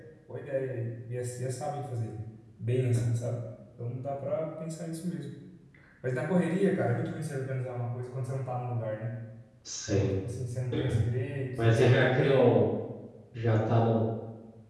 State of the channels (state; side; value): identical; both; correlation 1.00